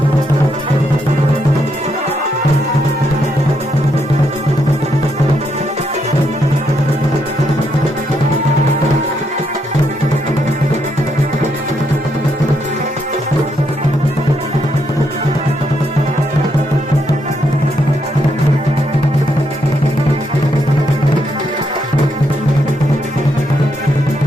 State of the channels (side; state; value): both; normal; correlation 0.77